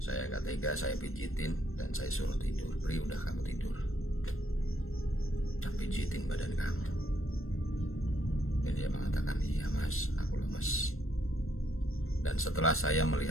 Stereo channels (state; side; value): late; right; 0.61 ms